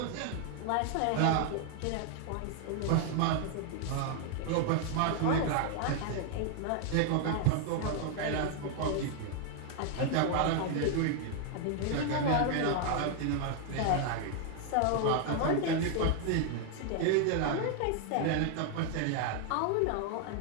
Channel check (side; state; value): both; different; correlation 0.00